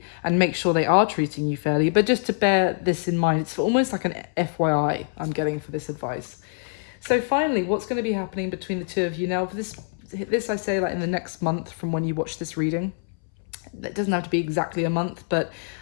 and make sure they are treating you fairly. But just to bear this in mind, it's almost like an FYI I'm getting for this advice. So finally, what's going to be happening between the two of you now? For this I say, like, in the next month from when you watch this reading. It doesn't have to be exactly a month, but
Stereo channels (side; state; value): right; silent; 62 dB below the other